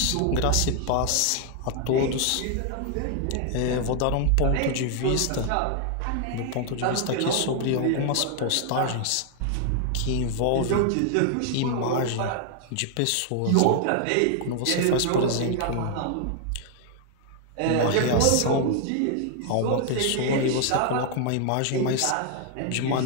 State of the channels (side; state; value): both; different; correlation 0.00